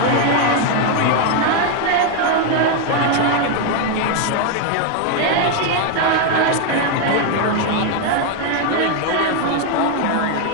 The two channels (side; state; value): both; different; correlation 0.01